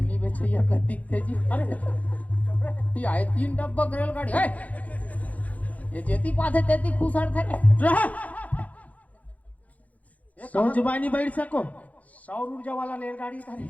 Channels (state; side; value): late; right; 0.071 ms